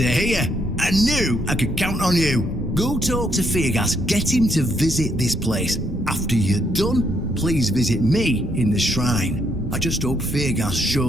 hear. I knew I could count on you. Go talk to Feargas, get him to visit this place. After you're done, please visit me in the shrine. I just hope Feargas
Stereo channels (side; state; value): both; normal; correlation 0.73